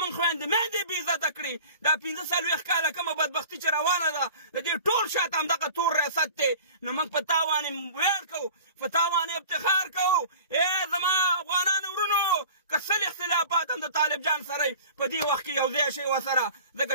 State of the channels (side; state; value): both; inverted; correlation -0.41